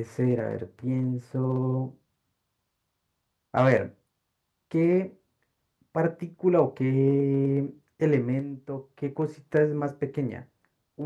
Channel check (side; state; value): both; identical; correlation 1.00